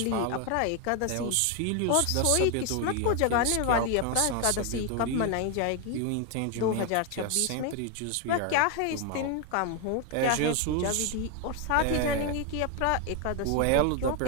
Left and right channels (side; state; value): both; different; correlation 0.01